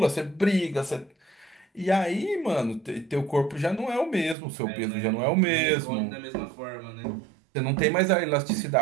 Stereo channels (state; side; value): drops out; left; at 4.4 s